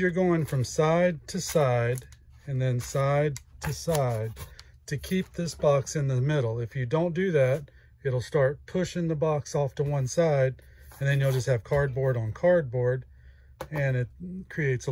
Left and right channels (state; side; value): identical; both; correlation 1.00